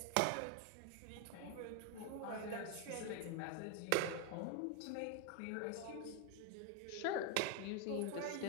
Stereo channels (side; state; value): both; different; correlation 0.01